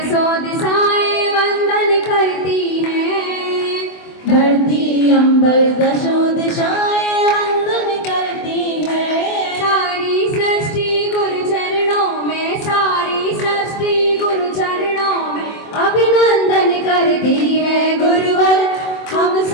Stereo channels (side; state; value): right; late; 24 ms